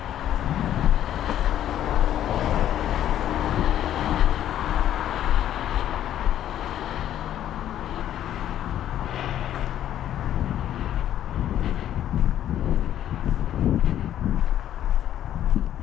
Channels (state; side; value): quieter; right; 11.4 dB